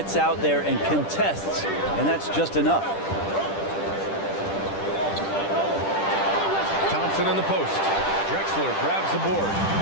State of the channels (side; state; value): right; late; 10 ms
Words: out there and contests, and that's just enough. Thompson in the post. Drexler grabs the board.